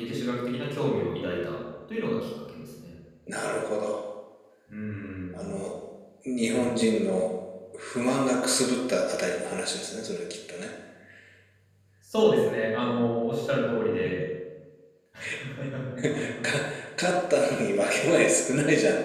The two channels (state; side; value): identical; both; correlation 1.00